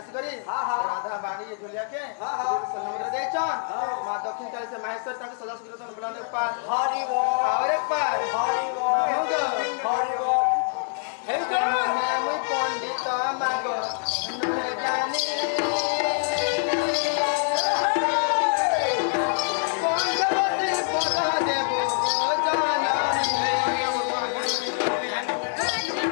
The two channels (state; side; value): silent; right; digital silence